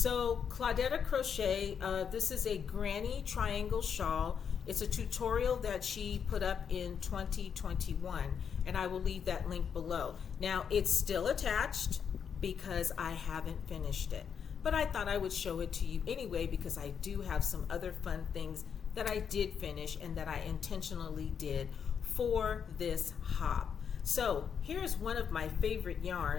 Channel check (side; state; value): right; quieter; 7.3 dB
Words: Claudetta Crochet, this is a granny triangle shawl. It's a tutorial that she put up in 2021, and I will leave that link below. Now it's still attached because I haven't finished it, but I thought I would show it to you anyway because I do have some other fun things that I did finish and that I intentionally did for this hop. So here's one of my favorite